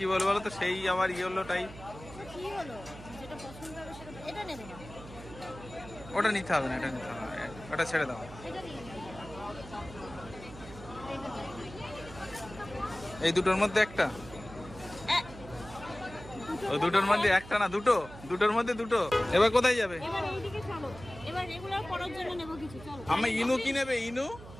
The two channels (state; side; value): noise; right; hum, 16 dB below the sound